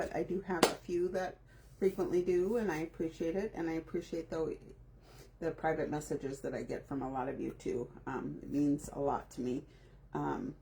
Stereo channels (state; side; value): identical; both; correlation 1.00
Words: I do have a few that frequently do, and I appreciate it. And I appreciate the private messages that I get from a lot of you too. It means a lot to me,